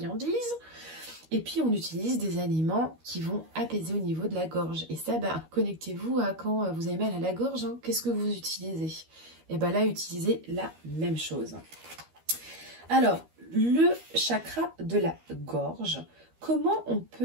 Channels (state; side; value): late; left; 13 ms